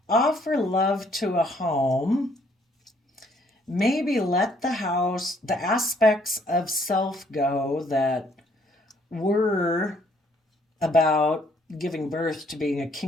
offer love to a home, maybe let the aspects of self go that were about giving birth to being a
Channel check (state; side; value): normal; both; correlation 0.65